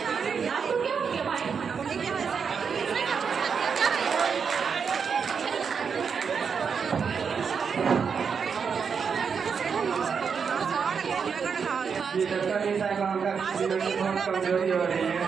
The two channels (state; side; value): quieter; left; 6.2 dB